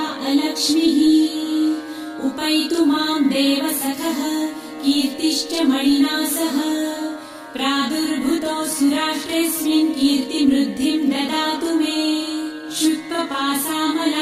अलक्ष्मीः उपैतु मां देवसखः कीर्तिश्च मणिना सह प्रादुर्भूतोऽसुराष्ट्रेऽस्मिन् कीर्तिमृद्धिं ददातु मे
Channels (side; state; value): both; identical; correlation 1.00